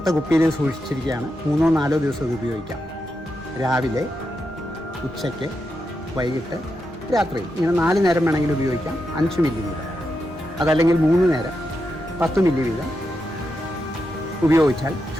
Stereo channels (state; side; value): normal; both; correlation 0.86